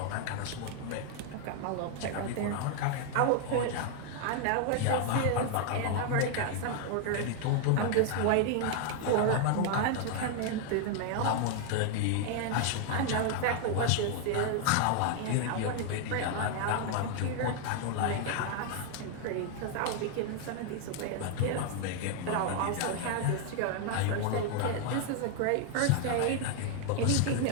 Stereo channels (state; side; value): different; both; correlation 0.00